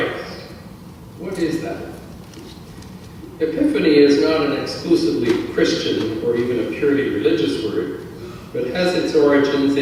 What is that? Epiphany is not an exclusively Christian or even a purely religious word, but has its origins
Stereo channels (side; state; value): both; identical; correlation 1.00